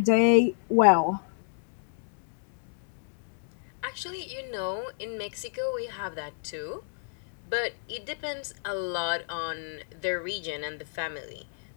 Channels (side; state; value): right; silent; digital silence